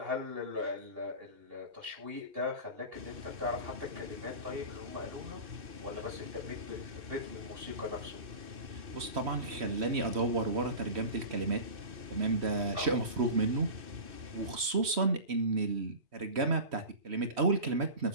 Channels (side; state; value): left; late; 3.1 ms